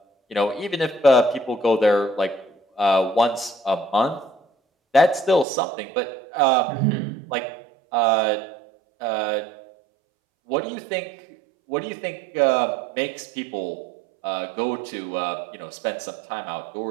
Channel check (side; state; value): left; drops out; at 5.5 s